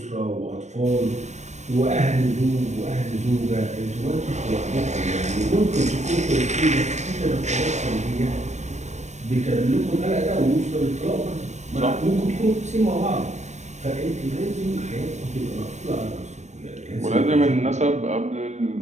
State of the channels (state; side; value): late; left; 0.34 ms